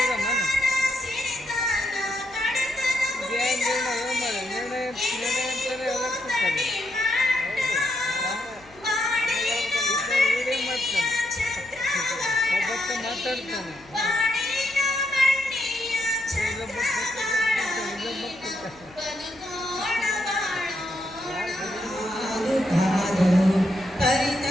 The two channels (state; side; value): noise; left; hum, 25 dB below the sound